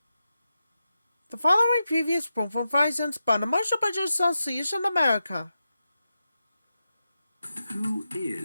The following previous performance by the Marshall Budget Association America. Who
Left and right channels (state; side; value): inverted; both; correlation -0.89